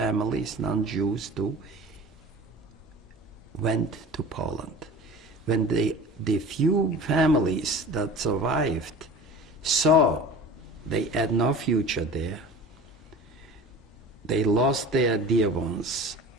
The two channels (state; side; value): normal; both; correlation 0.38